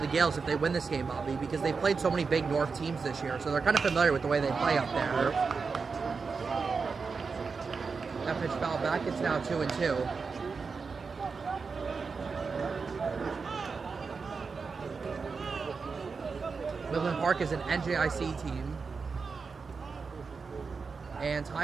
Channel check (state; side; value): quieter; left; 4.9 dB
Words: Gales if they win this game, Bobby, because they've played so many big North teams this year, so they're kind of familiar with the way they play up there. That pitch fouled back. It's now 2-2. Midland Park is an NJIC team. And